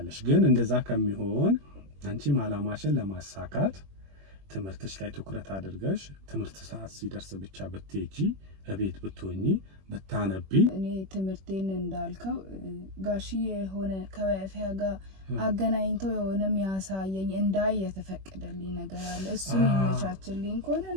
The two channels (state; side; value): late; left; 21 ms